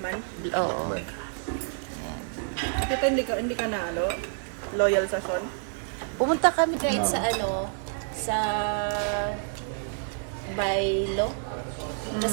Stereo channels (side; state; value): left; silent; 59 dB below the other